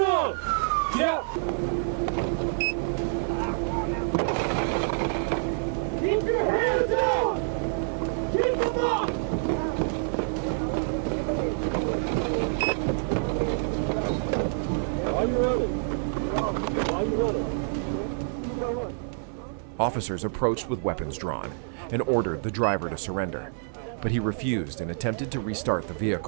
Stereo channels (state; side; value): silent; left; 57 dB below the other